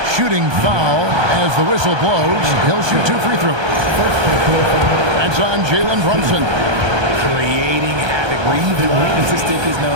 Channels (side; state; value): left; late; 1.3 ms